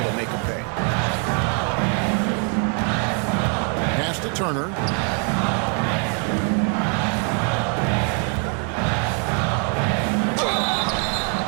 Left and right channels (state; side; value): quieter; left; 39.7 dB